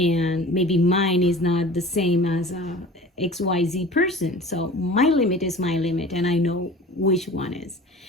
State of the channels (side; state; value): both; normal; correlation 0.41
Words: maybe mine is not the same as a XYZ person. So my limit is my limit, and I know which one is,